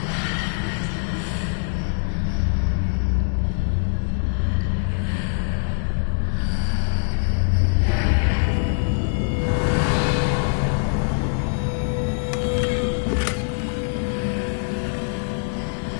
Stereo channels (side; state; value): right; silent; digital silence